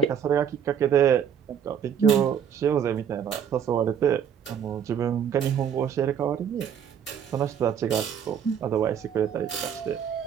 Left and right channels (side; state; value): left; quieter; 8.3 dB